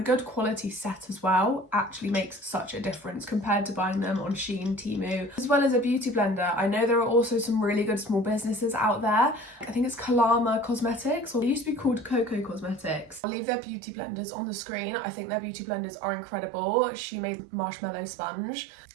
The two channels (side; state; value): left; drops out; at 13.2 s